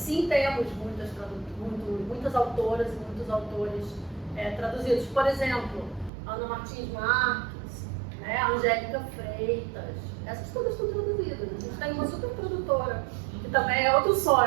temos muitas autoras e muitos autores traduzidos. Por exemplo, Ana Martins Marques, né? Angélica Freitas, essas todas estão traduzidas. A gente tem uma super tradutora, que também é outro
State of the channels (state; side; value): drops out; left; at 6.1 s